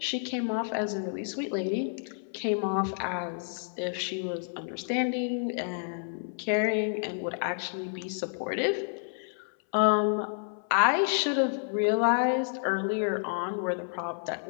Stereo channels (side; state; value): right; silent; 58 dB below the other